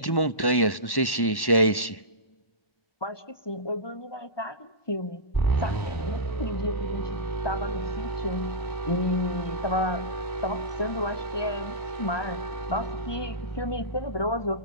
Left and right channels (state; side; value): late; right; 1.1 ms